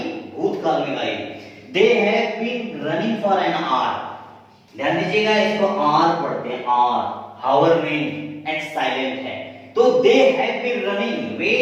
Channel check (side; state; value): both; identical; correlation 1.00